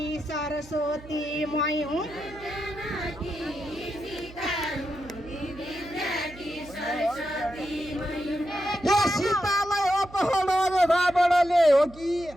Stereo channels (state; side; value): noise; right; hum, 19 dB below the sound